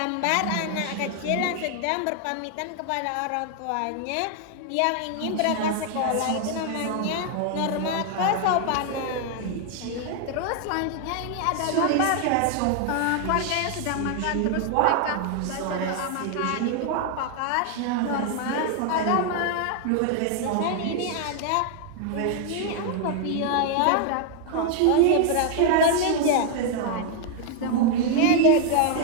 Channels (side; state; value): both; different; correlation 0.00